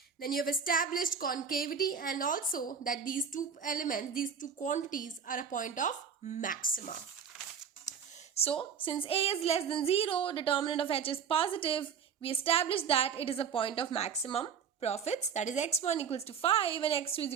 Then you have established concavity and also that these two elements, these two quantities are a point of maxima. So since A is less than 0, determinant of H is positive, we established that it is a point of maximum profits. That is x1 equals to 5 and x2 is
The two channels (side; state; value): left; quieter; 6.8 dB